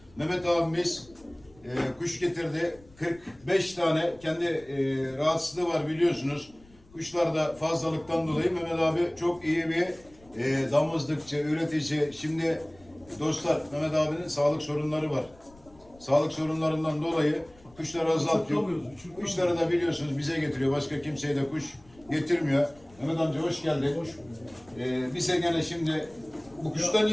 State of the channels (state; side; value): noise; left; rumble, 26 dB below the sound